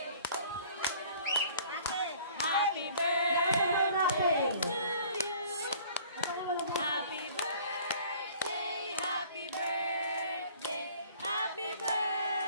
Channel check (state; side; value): inverted; both; correlation -0.52